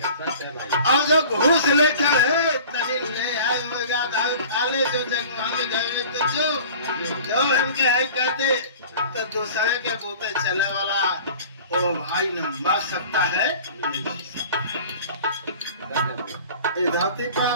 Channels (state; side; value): inverted; both; correlation -0.43